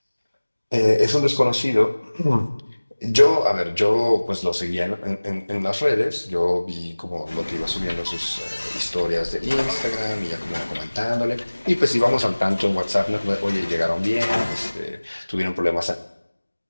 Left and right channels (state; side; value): inverted; both; correlation -1.00